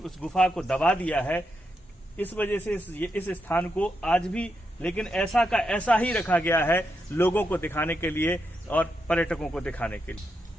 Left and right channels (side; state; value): both; normal; correlation 0.84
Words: गुफा को दबा दिया है। इस वजह से इस स्थान को आज भी लेकिन ऐसा का ऐसा ही रखा गया है, लोगों को दिखाने के लिए और पर्यटकों को दिखाने के